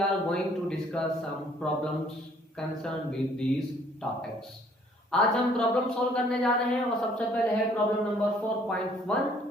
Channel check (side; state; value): both; normal; correlation 0.61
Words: are going to discuss some problems concern with these topics. आज हम प्रॉब्लम सॉल्व करने जा रहे हैं और सबसे पहले है problem number 4.1,